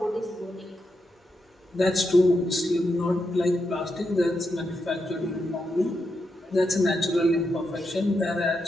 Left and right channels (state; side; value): normal; both; correlation 0.84